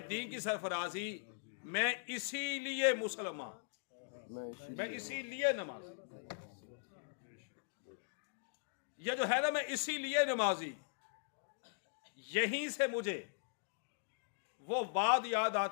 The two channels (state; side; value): silent; right; digital silence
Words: दीन की सरफराजी। मैं इसीलिए मुसलमान, मैं इसीलिए नमाजी, ये जो है ना मैं इसीलिए नमाजी। यहीं से मुझे वो बात याद